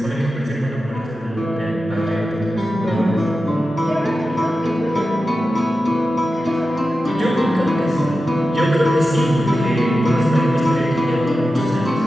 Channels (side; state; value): both; normal; correlation 0.92